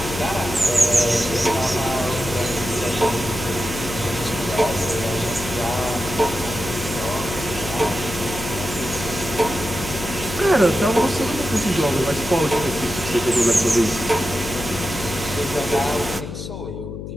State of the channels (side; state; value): left; noise; hum, 8 dB below the sound